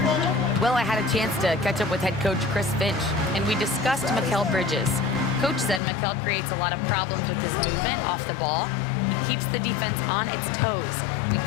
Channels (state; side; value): drops out; right; at 5.8 s